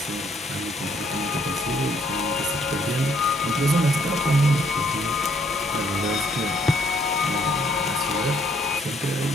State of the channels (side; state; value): both; normal; correlation 0.67